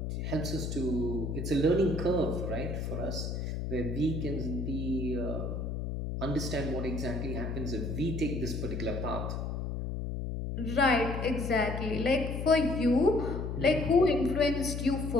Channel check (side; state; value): left; noise; hum, 3 dB below the sound